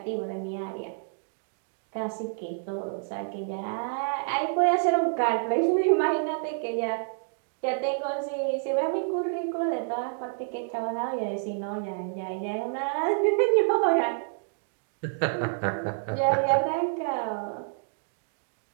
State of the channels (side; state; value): left; silent; digital silence